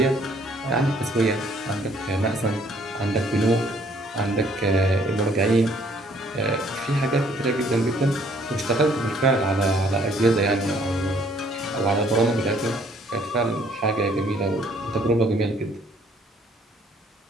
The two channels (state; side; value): normal; both; correlation 0.62